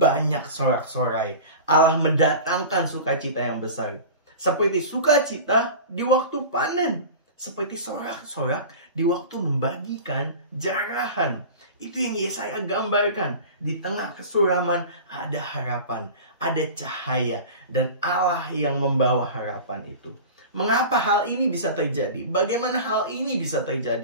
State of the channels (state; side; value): inverted; both; correlation -0.34